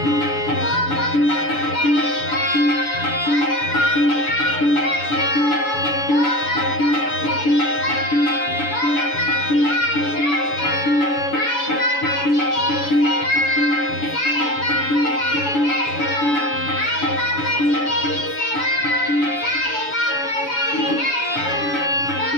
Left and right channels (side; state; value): right; late; 7.0 ms